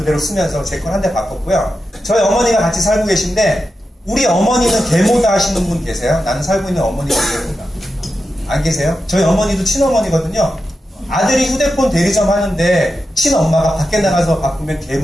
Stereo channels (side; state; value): both; normal; correlation 0.90